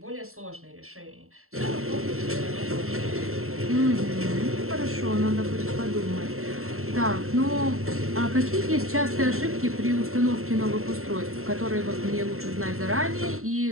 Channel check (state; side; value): late; left; 0.62 ms